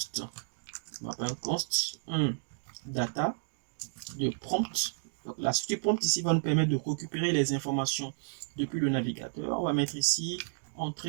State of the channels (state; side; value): silent; left; digital silence